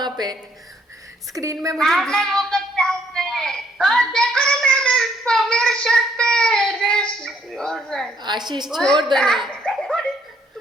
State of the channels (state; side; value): normal; both; correlation 0.67